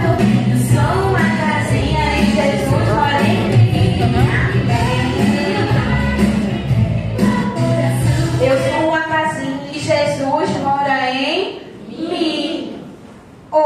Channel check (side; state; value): both; identical; correlation 1.00